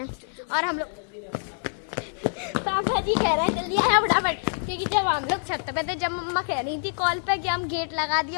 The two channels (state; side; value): silent; right; digital silence